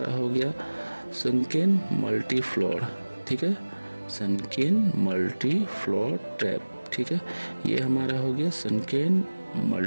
हो गया सनकेन मल्टी फ्लोर, ठीक है, सनकेन मल्टी फ्लोर ट्रैप, ठीक है। ये हमारा हो गया सनकेन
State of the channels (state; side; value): inverted; both; correlation -1.00